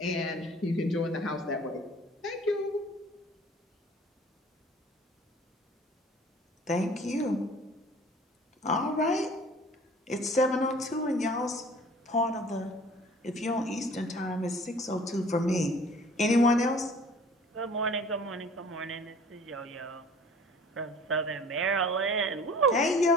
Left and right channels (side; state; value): both; normal; correlation 0.49